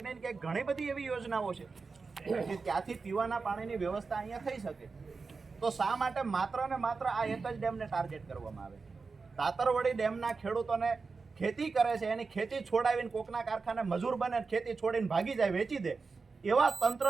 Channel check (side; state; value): left; quieter; 4.5 dB